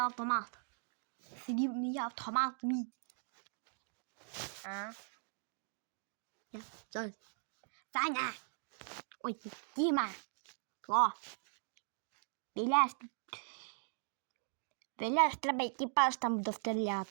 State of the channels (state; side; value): silent; left; digital silence